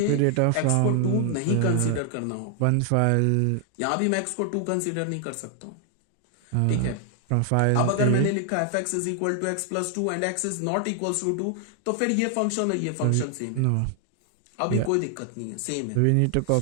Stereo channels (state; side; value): different; both; correlation 0.00